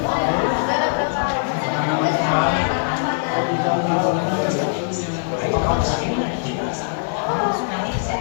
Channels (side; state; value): right; silent; digital silence